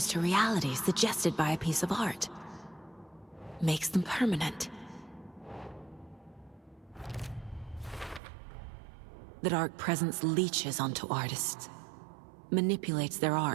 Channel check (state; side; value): drops out; left; at 8.2 s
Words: to reality suggested by a piece of art. Makes them permanent. The dark presence leeches onto artists. Manipulates their